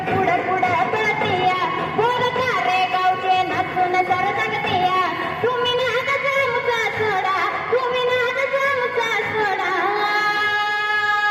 पुढं पुढं पळतिया बोल सारे गावचे नाचून सर जगतिया तुम्ही नाद जामचा सोडा तुम्ही नाद जामचा सोडा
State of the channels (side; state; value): both; identical; correlation 1.00